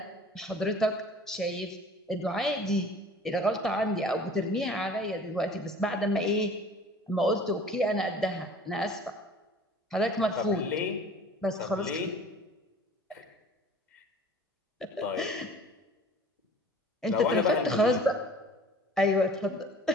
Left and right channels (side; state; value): both; normal; correlation 0.47